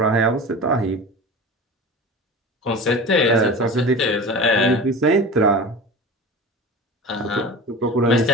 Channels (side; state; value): both; normal; correlation 0.33